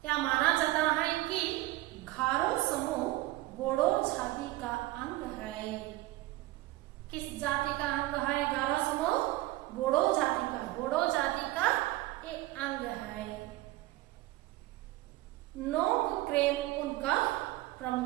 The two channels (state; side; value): quieter; left; 17.8 dB